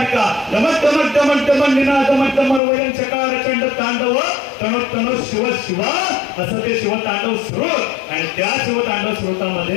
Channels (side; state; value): right; drops out; at 2.6 s